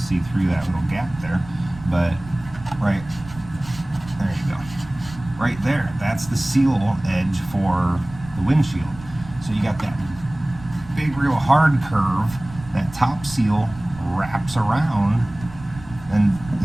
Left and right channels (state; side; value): noise; right; rumble, 16 dB below the sound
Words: through that little gap there, but right there you go. Right there, that's the seal edge for the windshield. So you got that big, real hard curve. That top seal wraps around, and